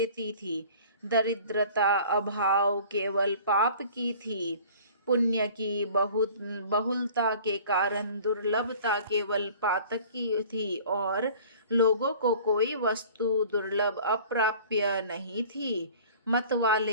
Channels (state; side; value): inverted; both; correlation -0.47